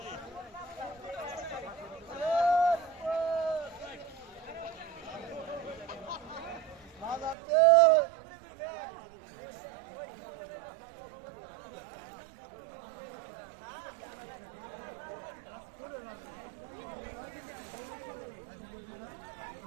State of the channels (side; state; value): left; drops out; at 7.4 s